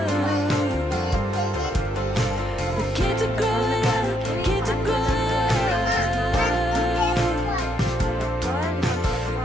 The kids are growing up, kids are growing up.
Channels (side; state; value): both; normal; correlation 0.76